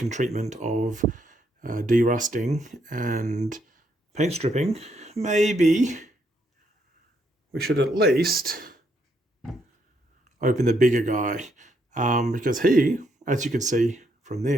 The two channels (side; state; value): both; normal; correlation 0.75